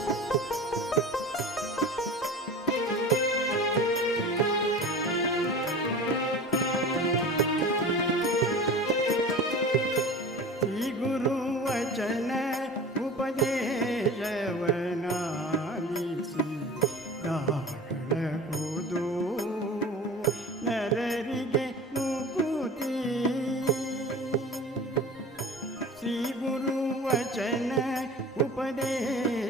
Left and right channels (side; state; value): both; normal; correlation 0.37